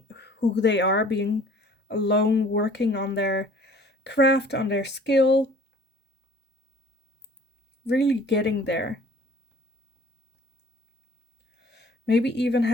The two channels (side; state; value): both; normal; correlation 0.52